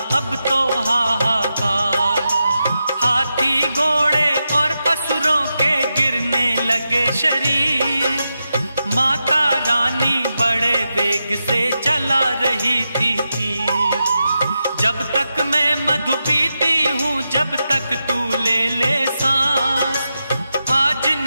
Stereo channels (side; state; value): both; inverted; correlation -0.88